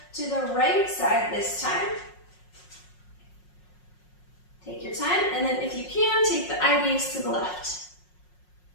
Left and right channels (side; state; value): right; late; 5.5 ms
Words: to the right side this time. Take your time, and then if you can, take the eye gaze to the left.